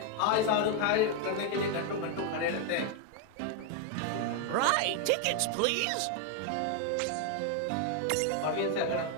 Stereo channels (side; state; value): both; different; correlation 0.01